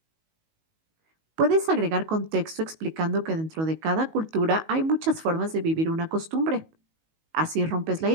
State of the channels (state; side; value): late; left; 19 ms